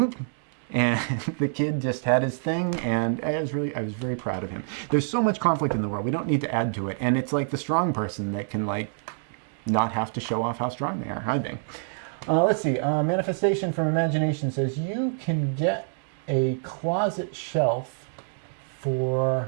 the kid just had his thing, and I was very proud of him. There's so much conflict in the world. We don't need to add to it. And it's like the strong person that can, not have to show off how strong they are, I think. Let's see. Manifestation from Imagination says, you can get a closet shelf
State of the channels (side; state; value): left; silent; digital silence